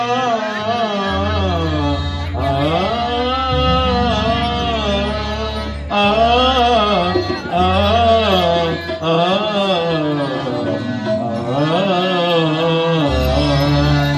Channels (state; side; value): identical; both; correlation 1.00